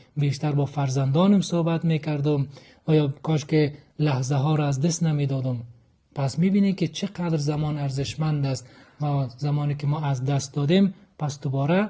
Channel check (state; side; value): identical; both; correlation 1.00